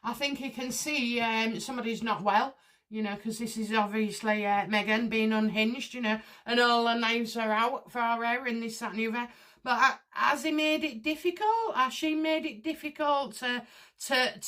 I think he can see somebody's not well, you know, because this is obviously Meghan being unhinged, you know, and all the knives are out for her and this, that and the other. But has he made it difficult? Has she made it difficult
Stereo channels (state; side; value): identical; both; correlation 1.00